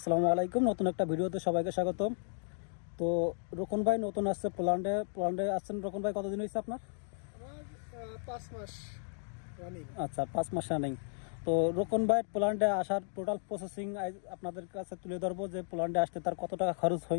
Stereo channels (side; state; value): right; silent; digital silence